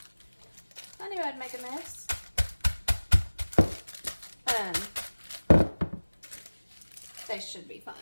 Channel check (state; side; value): inverted; both; correlation -1.00